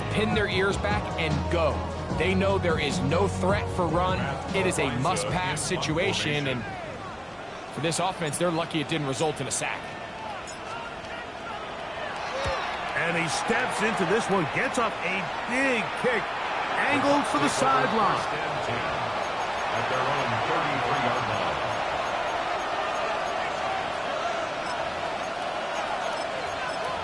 pin their ears back and go. They know there is no threat for run. It is a must-pass situation. And for this offense, they're lucky it didn't result in a sack. And he steps into this one, gets up a big kick, angled for the sideline. At their own 33-yard line.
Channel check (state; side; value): identical; both; correlation 1.00